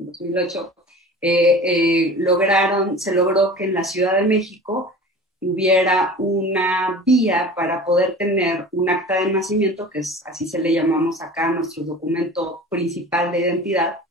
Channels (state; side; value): normal; both; correlation 0.39